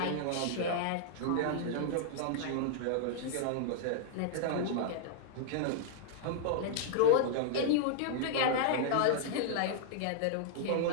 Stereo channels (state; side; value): different; both; correlation -0.01